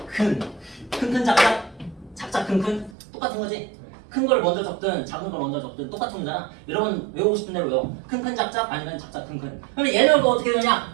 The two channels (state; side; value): drops out; left; at 3.0 s